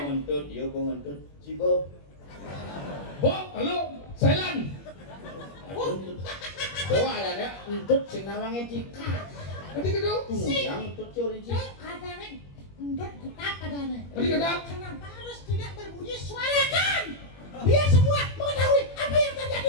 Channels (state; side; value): late; right; 21 ms